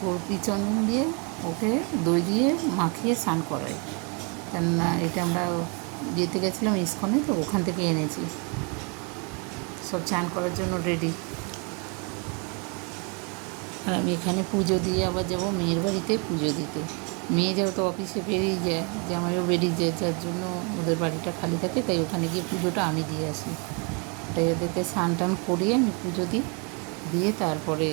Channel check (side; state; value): left; quieter; 34.5 dB